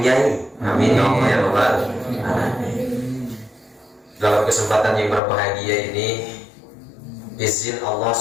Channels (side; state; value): right; drops out; at 5.2 s